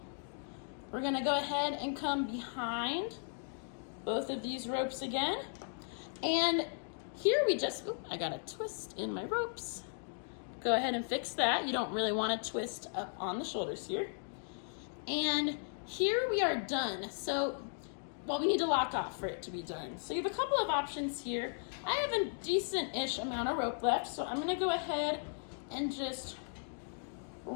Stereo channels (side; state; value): right; silent; digital silence